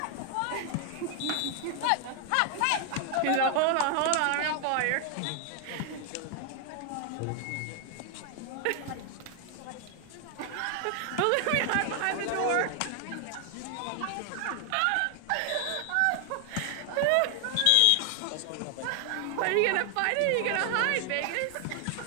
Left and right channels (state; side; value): different; both; correlation 0.00